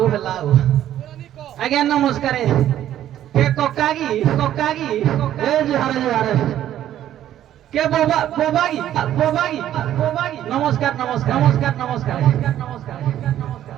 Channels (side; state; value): left; quieter; 11.8 dB